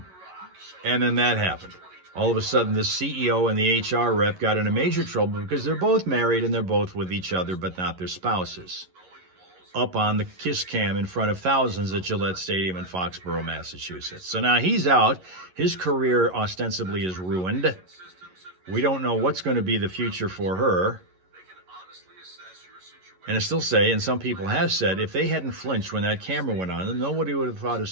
then that happened. All of a sudden, the CEO and the HR rep got into major trouble because they're both married and they're both with each other, but not their spouses, up on the kiss cam in front of thousands at Gillette Stadium in Foxborough, Massachusetts. So now he's out. His career ostensibly is ruined. We don't know what's going to be the future for her. And I still say, and some people have said, if they hadn't flinched when that camera went on, then nobody would have thought a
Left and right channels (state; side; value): late; left; 11 ms